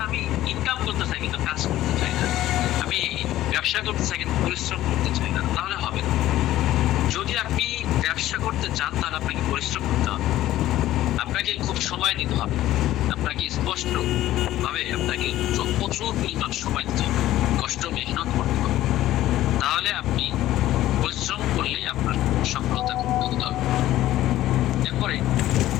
আমি ইনকাম করতে চাই কিন্তু কাজ করতে চাই না, আমি ব্যবসা করতে চাই কিন্তু পরিশ্রম করতে চাই না, তাহলে হবে না। যদি আপনি ব্যবসা করতে চান তাহলে আপনাকে পরিশ্রম করতে হবে, আপনাকে খুব সময় দিতে হবে, আপনাকে স্পষ্ট ভাবে আপনাকে প্রচুর পরিমাণ সময় দিতে হবে, কষ্ট মেহনত করতে হবে। তাহলে আপনি পরিশ্রম করলেই আপনার সফলতা খুব দ্রুত হবে। এরপরে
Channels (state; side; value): quieter; right; 14.3 dB